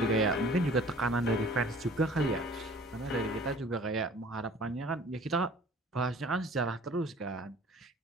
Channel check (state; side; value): normal; both; correlation 0.49